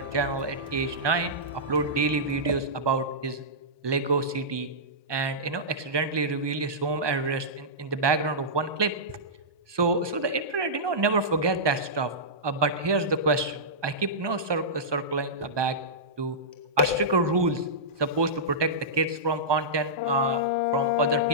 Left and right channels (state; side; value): late; left; 1.2 ms